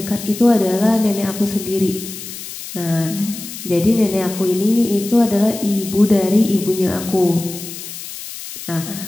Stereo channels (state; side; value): noise; left; hiss, 11 dB below the sound